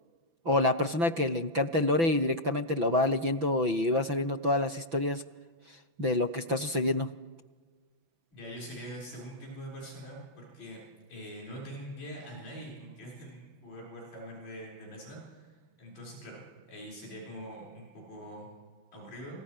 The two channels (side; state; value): left; late; 6.0 ms